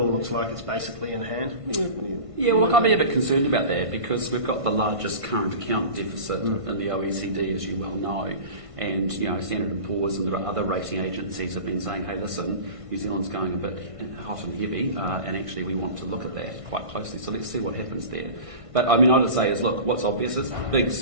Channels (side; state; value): left; late; 1.5 ms